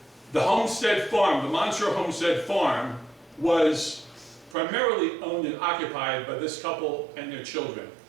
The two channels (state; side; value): drops out; left; at 4.5 s